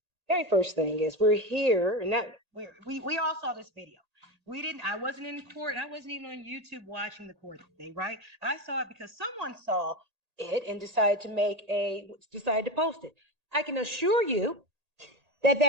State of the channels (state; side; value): late; left; 1.8 ms